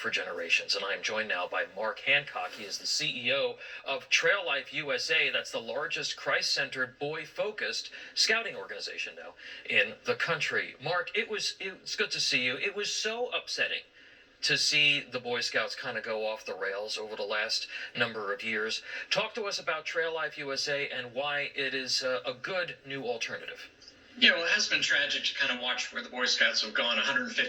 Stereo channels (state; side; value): identical; both; correlation 1.00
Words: generations. And I am joined now by Mark Hancock. He is the CEO of Trail Life USA. That's the largest Christ-centered, boy-focused scouting organization now in the country. Mark, it's good to see you. It was so upsetting to see the Boy Scouts kind of go off the rails over the last number of years. Talk to us about Trail Life USA and why it is a good new alternative. It has been tragic to kind of watch where the Boy Scouts have gone. A